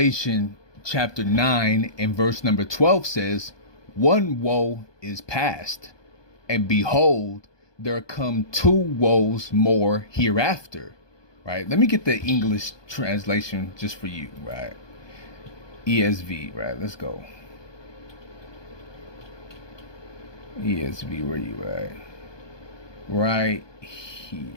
chapter 9 and verse number 12 says, "One woe is past, and behold, there come 2 woes more hereafter." Right? Let me get the English translation just for you, right? ESV, right? Let's go. ESV, where you at? Right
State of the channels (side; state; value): right; late; 1.2 ms